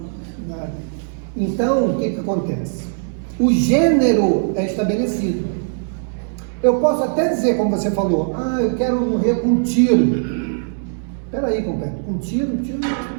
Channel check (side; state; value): left; silent; digital silence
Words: Então, o que acontece? O gênero é estabelecido. Eu posso até dizer, como você falou, eu quero morrer com um tiro. Espera aí, companheiro, com um tiro?